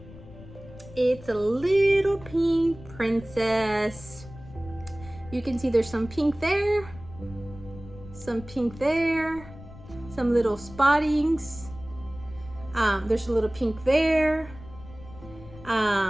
It's a little pink princess. You can see there's some pink there, some pink there, some little spottings. There's a little pink there.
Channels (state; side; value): noise; left; rumble, 17 dB below the sound